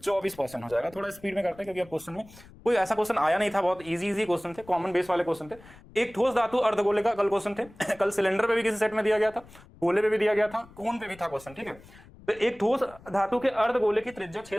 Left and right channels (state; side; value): noise; left; rumble, 22 dB below the sound